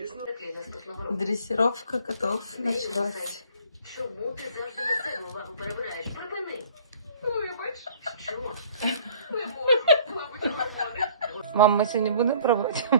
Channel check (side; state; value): both; inverted; correlation -0.54